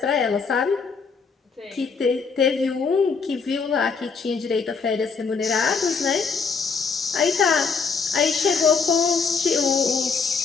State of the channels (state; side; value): quieter; right; 5.2 dB